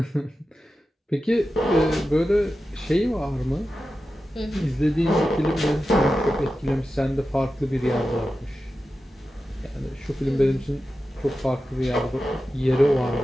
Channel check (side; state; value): both; normal; correlation 0.92